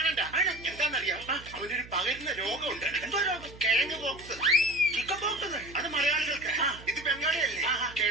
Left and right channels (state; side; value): noise; right; hum, 18 dB below the sound